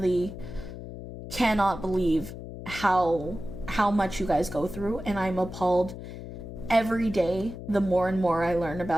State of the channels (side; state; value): left; noise; hum, 11 dB below the sound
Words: cannot believe how much you guys go through, and I'm appalled every day the more and more I learn